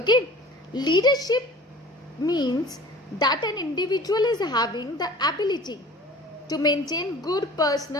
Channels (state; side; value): normal; both; correlation 0.44